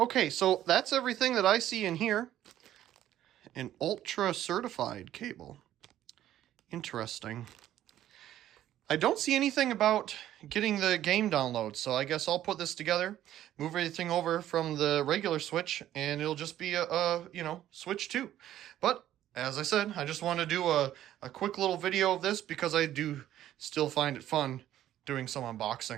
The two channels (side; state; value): left; quieter; 12.4 dB